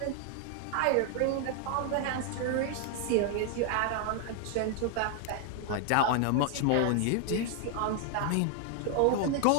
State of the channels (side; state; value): both; different; correlation 0.00